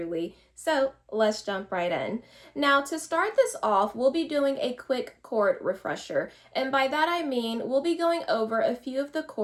So let's jump right in. Now to start this off, we'll be doing a quick chord refresher, and by that I mean we'll be going over a few of the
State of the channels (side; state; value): both; identical; correlation 1.00